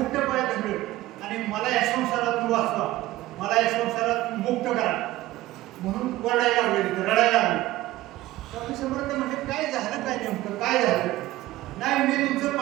पाय धरले आणि मला या संसारातून वाचवा, मला या संसारात मुक्त करा म्हणून रडायला लागले, रडायला लागले. स्वामी समर्थ म्हणजे काय झालं, काय नेमकं काय झालं? नाही, मी तुमचं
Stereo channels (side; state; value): left; quieter; 16.8 dB